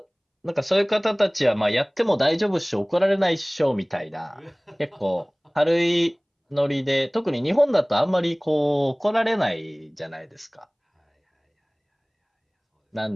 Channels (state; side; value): identical; both; correlation 1.00